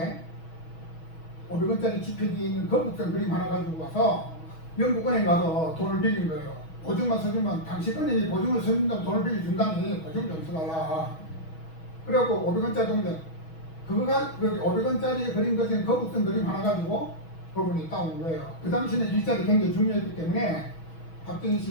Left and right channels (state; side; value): late; right; 6.2 ms